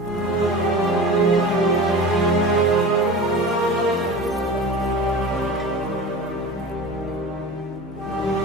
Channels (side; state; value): both; normal; correlation 0.34